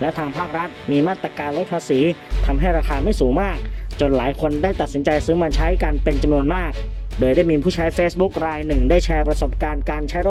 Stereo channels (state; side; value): identical; both; correlation 1.00